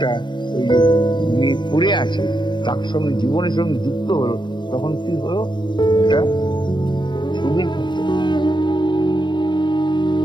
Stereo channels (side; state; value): right; late; 0.22 ms